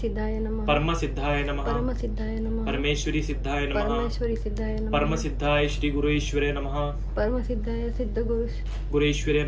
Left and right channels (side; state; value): both; identical; correlation 1.00